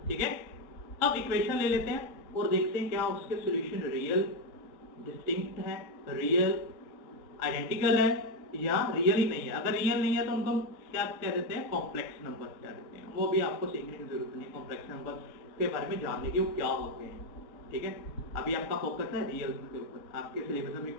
ठीक है, अब इक्वेशन ले लेते हैं और देखते हैं क्या उसके सॉल्यूशन रियल, डिस्टिंक्ट है, रियल, आइडेंटिकल है या रियल ही नहीं है। अगर रियल नहीं है तो उनको क्या कह देते हैं, कॉम्प्लेक्स नंबर कह देते हैं। वो भी आपको सीखने की जरूरत नहीं, कॉम्प्लेक्स नंबर के बारे में जानने की वो क्या होते हैं, ठीक है। अभी आपका फोकस है रियल के ऊपर, आपके सिलेबस में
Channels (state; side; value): late; right; 5.2 ms